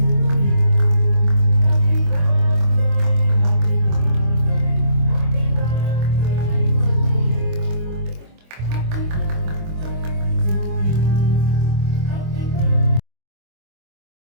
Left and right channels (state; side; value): late; left; 25 ms